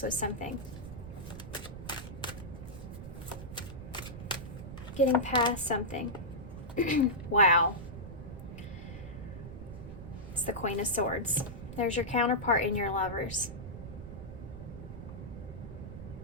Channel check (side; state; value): right; noise; rumble, 11 dB below the sound